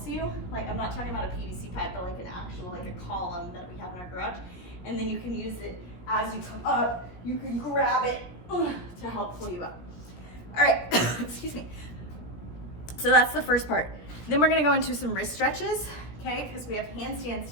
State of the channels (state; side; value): late; right; 17 ms